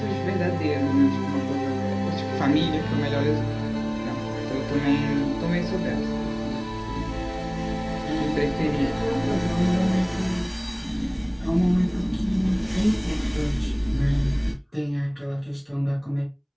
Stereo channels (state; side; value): identical; both; correlation 1.00